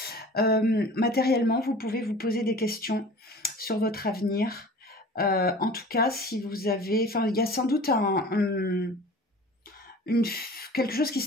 Matériellement, vous pouvez vous poser des questions sur votre avenir. En tout cas, si vous avez... Enfin, il y a sans doute quelque chose qui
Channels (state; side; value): normal; both; correlation 0.42